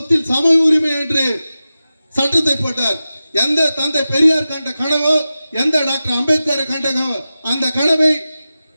சம உரிமை என்று சட்டத்தை போட்டார். எந்த தந்தை பெரியார் கண்ட கனவோ, எந்த டாக்டர் அம்பேத்கர் கண்டனோ அந்த கனவை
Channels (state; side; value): inverted; both; correlation -0.94